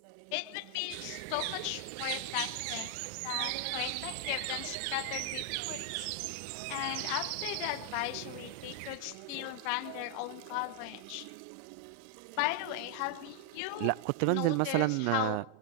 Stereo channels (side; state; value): both; different; correlation 0.00